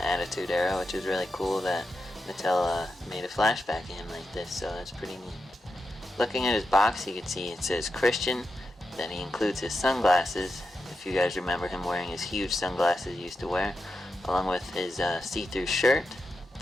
Attitude Era, which is really cool that Mattel made a flashback of him like this, so that's pretty neat. Looking at his box, you can see it says Christian, then he includes his sunglasses, if you guys remember him wearing his huge sunglasses he used to wear, along with his see-through shirt,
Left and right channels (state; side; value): normal; both; correlation 0.89